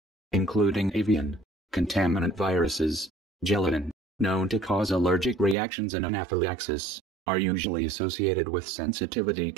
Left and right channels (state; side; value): drops out; left; at 5.6 s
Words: including avian, contaminant viruses, gelatin, known to cause allergic reactions and anaphylaxis, are usually associated with sensitivity